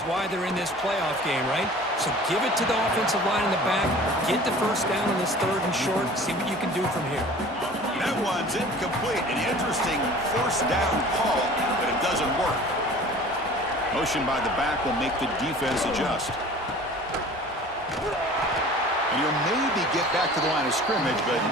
why they're in this playoff game, right? So give it to the offensive line in the back, get the first down on this 3rd and short, see what you can do from here. That one's incomplete. An interesting first down call, but it doesn't work. Motion by the back will make the defense adjust. And you'll maybe get back to the line of scrimmage, but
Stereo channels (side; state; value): both; normal; correlation 0.44